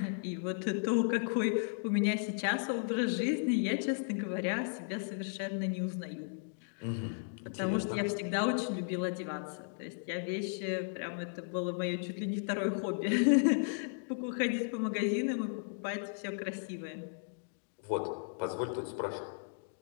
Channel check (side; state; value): right; silent; digital silence